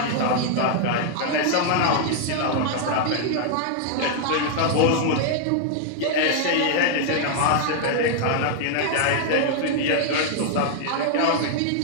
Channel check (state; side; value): different; both; correlation 0.00